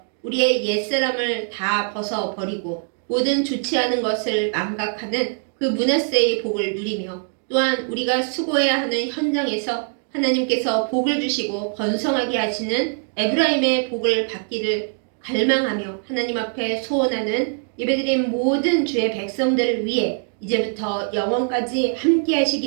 우리의 옛사람을 다 벗어버리고 모든 좋지 않은 것을 망각하는 그 므낫세의 복을 누리며 또한 우리가 수고해야 하는 현장에서 하나님께서 복을 주시고 번성하게 하시는 에브라임의 복을 받기를 갈망하며 하나님 앞에 소원하는 예배드린 모든 주의 백성들을 위해 이제부터 영원까지 함께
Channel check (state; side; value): silent; left; 57 dB below the other